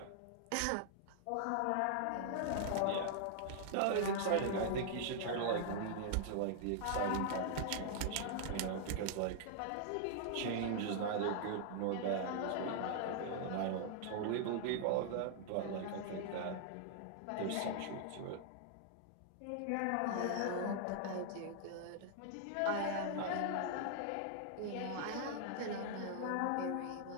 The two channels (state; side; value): different; both; correlation -0.01